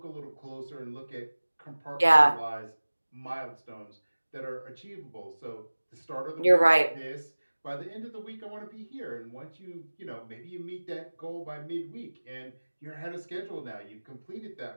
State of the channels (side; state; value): both; inverted; correlation -1.00